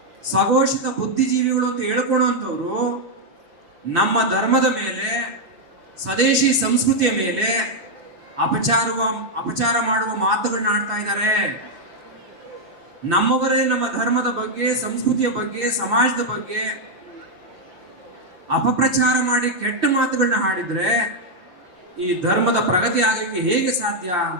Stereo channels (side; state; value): left; late; 5.8 ms